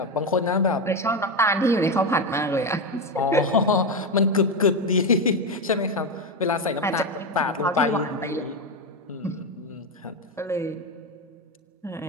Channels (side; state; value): both; normal; correlation 0.12